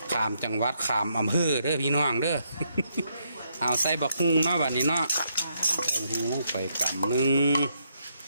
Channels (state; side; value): inverted; both; correlation -0.76